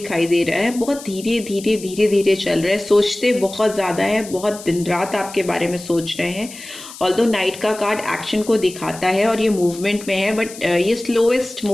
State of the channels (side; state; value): left; noise; hiss, 15 dB below the sound